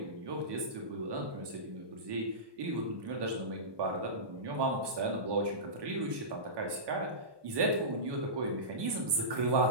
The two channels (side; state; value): left; late; 1.2 ms